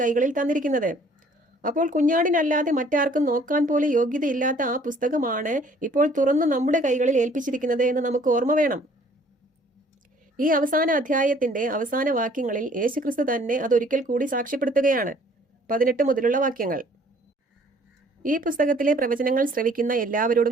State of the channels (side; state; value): both; normal; correlation 0.57